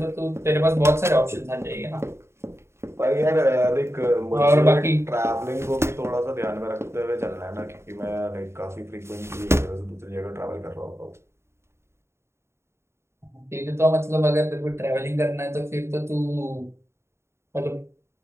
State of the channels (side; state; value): left; late; 0.13 ms